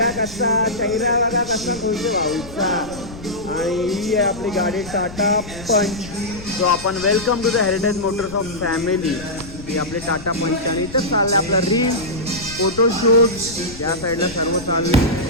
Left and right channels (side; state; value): left; noise; rumble, 15 dB below the sound